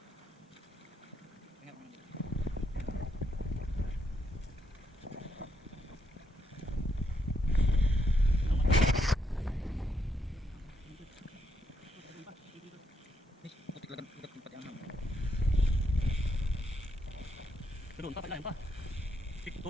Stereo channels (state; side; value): normal; both; correlation 0.78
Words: Doon pa, pailalim pa. Sik,